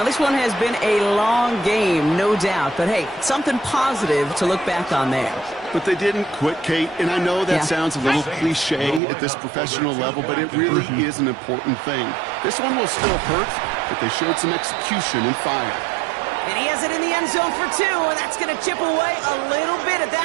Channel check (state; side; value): drops out; left; at 9.0 s